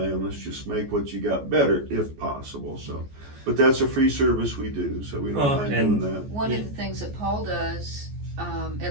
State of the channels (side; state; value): left; late; 14 ms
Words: and let's just make what you got better if possible. So, but that's a free service we do, so we don't mind doing that. One of the things that Paul does,